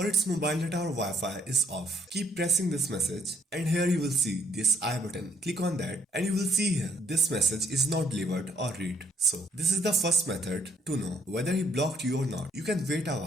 its mobile data or Wi-Fi is off. Keep pressing this message and here you will see this I button. Click on that and you will see here this message is not delivered or read. So this is the first method to know whether he blocked you or not. You can wait a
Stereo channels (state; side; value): normal; both; correlation 0.69